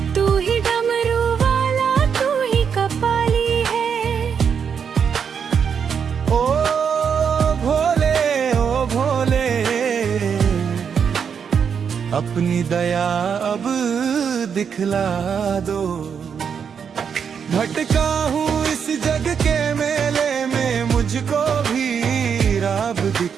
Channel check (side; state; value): left; quieter; 7.0 dB